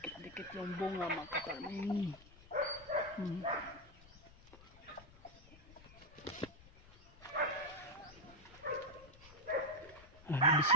yung bunga mga kaparming.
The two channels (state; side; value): noise; left; rumble, 22 dB below the sound